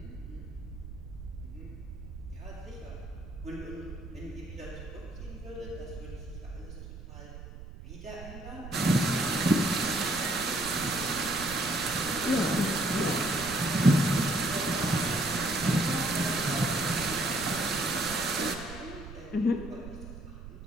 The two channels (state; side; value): noise; right; rumble, 13 dB below the sound